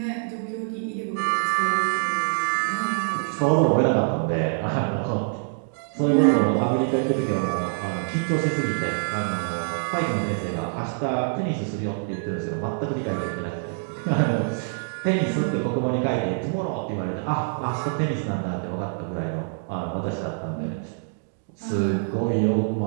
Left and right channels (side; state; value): left; silent; digital silence